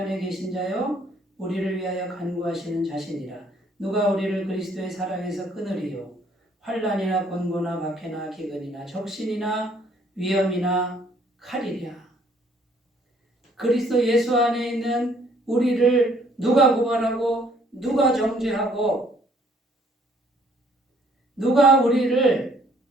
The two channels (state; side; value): normal; both; correlation 0.62